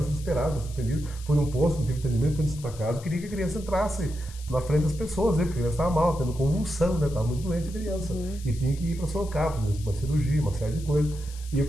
desesperado, atendido. Fui num posto, não tive atendimento, fui na casa, eu queria que a criança entrasse na frente das pessoas, né? Porque a criança estava mal, tendo convulsão, né? Estava muito doente a criança. E tinha que ir para Sorocaba, fazer uma cirurgia, uma série de coisas. E eu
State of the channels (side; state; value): left; noise; hiss, 19 dB below the sound